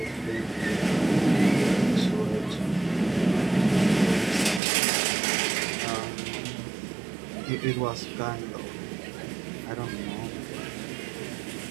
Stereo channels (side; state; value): left; drops out; at 4.6 s